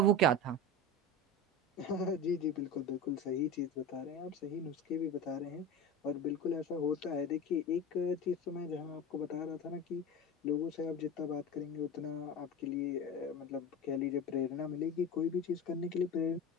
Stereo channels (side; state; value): both; normal; correlation 0.27